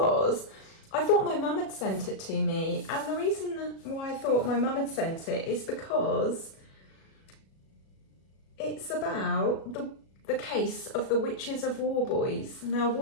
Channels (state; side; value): late; right; 37 ms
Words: I thought my mum had sent it to me, and the reason why I thought my mum had sent it is because it's about the case of the Witches of Warboys. Now,